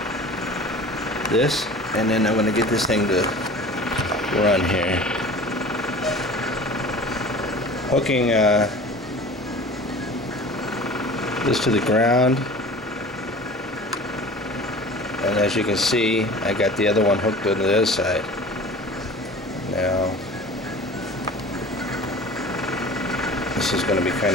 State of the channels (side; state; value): both; normal; correlation 0.40